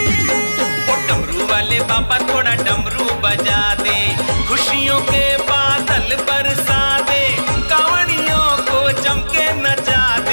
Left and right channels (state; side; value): inverted; both; correlation -1.00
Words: ओ डमरू वाले बाबा थोड़ा डमरू बजा दे, खुशियों के बादल बरसा दे, कांवड़ियों को चमके नचा